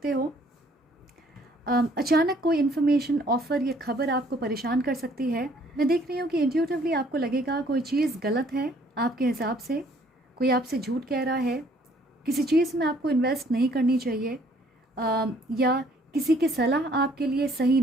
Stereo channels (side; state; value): both; normal; correlation 0.61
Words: हो। अचानक कोई इन्फॉर्मेशन, ऑफ़र या खबर आपको परेशान कर सकती है। मैं देख रही हूँ कि इंट्यूटिवली आपको लगेगा कोई चीज़ गलत है आपके हिसाब से, कोई आपसे झूठ कह रहा है, किसी चीज़ में आपको इन्वेस्ट नहीं करनी चाहिए, या किसी की सलाह आपके लिए सही